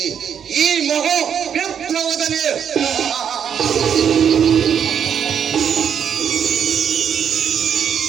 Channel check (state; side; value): quieter; left; 8.1 dB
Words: ಈ ಮಹಾ ವಿಪ್ಲವದಲ್ಲಿ.